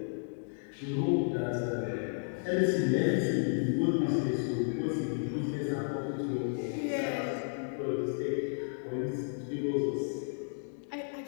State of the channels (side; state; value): right; silent; digital silence